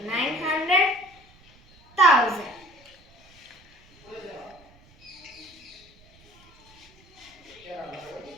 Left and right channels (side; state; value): right; noise; rumble, 28 dB below the sound